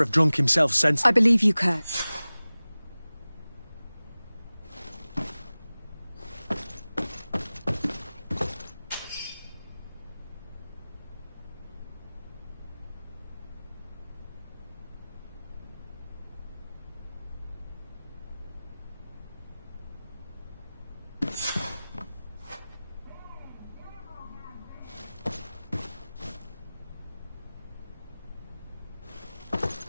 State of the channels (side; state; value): both; inverted; correlation -0.98